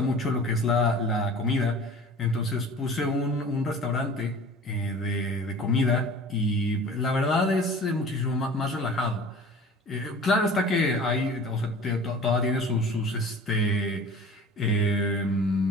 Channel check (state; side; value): normal; both; correlation 0.42